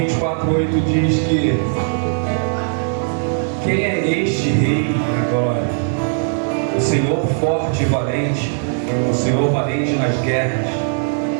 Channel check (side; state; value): left; silent; digital silence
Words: diz que quem é este rei da glória? O Senhor forte e valente, o Senhor valente nas guerras.